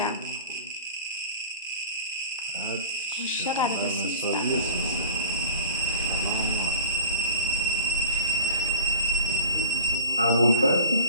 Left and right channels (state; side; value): inverted; both; correlation -0.42